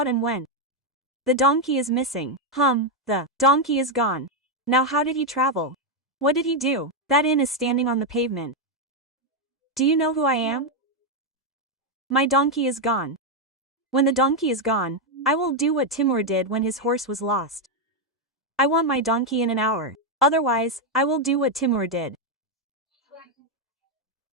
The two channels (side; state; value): both; normal; correlation 0.03